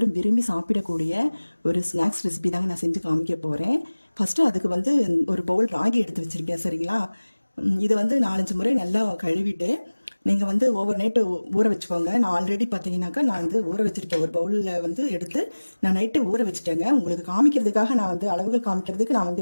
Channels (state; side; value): inverted; both; correlation -1.00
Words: விரும்பி சாப்பிடக்கூடிய ஒரு ஸ்நாக்ஸ் ரெசிபி தாங்க நான் செஞ்சு காமிக்க போகிறேன். ஃபஸ்ட்டு அதுக்கு வந்து ஒரு பவுல் ராகி எடுத்து வச்சுருக்கேன். சரிங்களா? இதை வந்து 4-5 முறை நல்லா கழுவிட்டு நீங்கள் வந்து ஓவர் நைட்டு ஊற வச்சுக்கோங்க. நான் ஆல்ரெடி பார்த்தீங்கன்னாக்கா நான் வந்து ஊற வச்சுருக்கேன். ஒரு பவுலில் வந்து எடுத்து நான் நைட்டு ஊற வச்சுட்டேங்க. உங்களுக்கு காமிக்கிறதுக்காக நான் வந்து அளவுகள் காமிக்கிறதுக்கு நான்